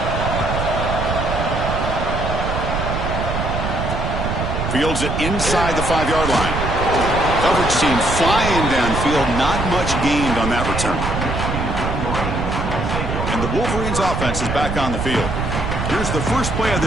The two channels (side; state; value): right; noise; rumble, 3 dB below the sound